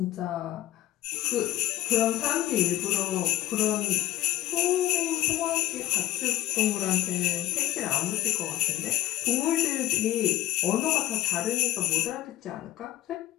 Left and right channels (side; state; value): right; quieter; 14.3 dB